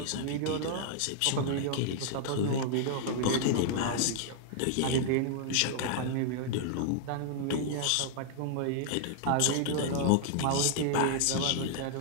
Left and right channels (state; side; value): different; both; correlation -0.01